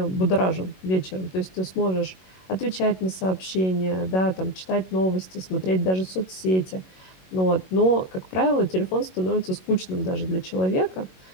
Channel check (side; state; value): right; late; 21 ms